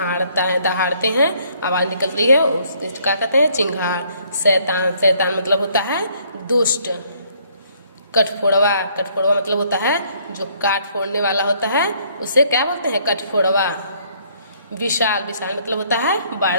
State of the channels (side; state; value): both; inverted; correlation -0.64